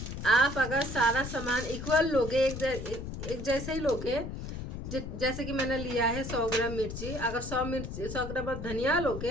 आप अगर सारा सामान इक्वल लोगे, एक जैसे ही लोगे, जैसे कि मैंने लिया है 100 ग्राम मिर्ची, अगर 100 ग्राम धनिया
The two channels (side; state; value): left; noise; rumble, 7 dB below the sound